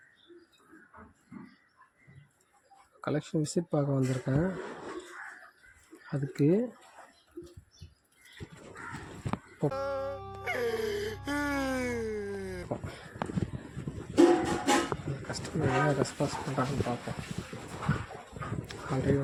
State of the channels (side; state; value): both; identical; correlation 1.00